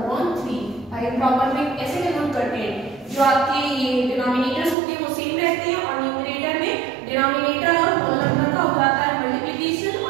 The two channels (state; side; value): drops out; left; at 4.8 s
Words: भाई प्रॉपर में ऐसे कन्वर्ट करते हैं. जो आपके ये डिनोमिनेटर्स होते हैं वो सेम रहते हैं और न्यूमरेटर में डिनोमिनेटर और होल नंबर का हो जाता है मल्टीप्लिकेशन